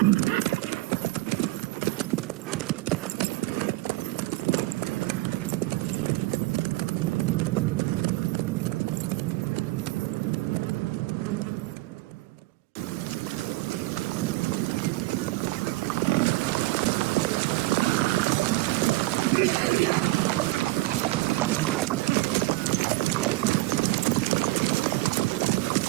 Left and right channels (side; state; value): left; quieter; 19.8 dB